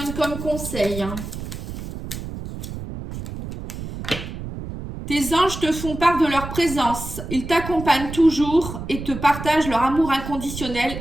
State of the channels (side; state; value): right; noise; rumble, 9 dB below the sound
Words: comme conseil? Tes anges te font part de leur présence. Ils t'accompagnent toujours et te partagent leur amour inconditionnel